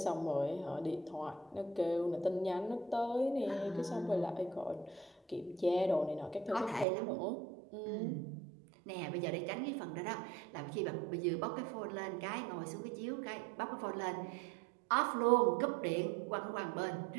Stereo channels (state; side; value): drops out; left; at 6.9 s